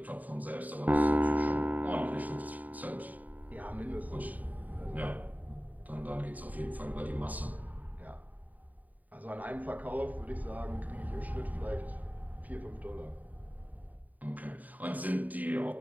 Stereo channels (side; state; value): left; late; 0.077 ms